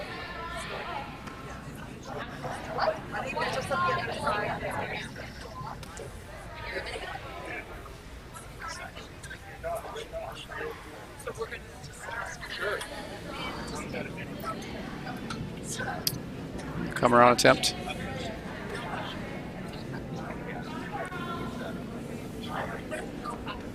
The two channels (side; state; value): both; identical; correlation 1.00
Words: Come around attempt.